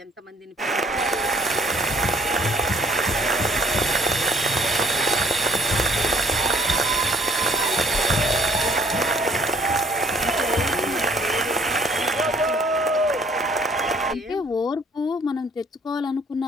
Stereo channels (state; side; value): normal; both; correlation 0.61